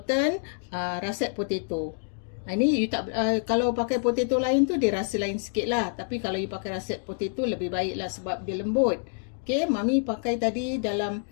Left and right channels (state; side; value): silent; right; 60 dB below the other